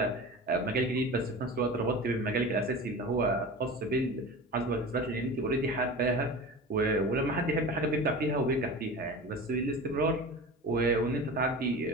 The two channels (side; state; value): both; normal; correlation 0.33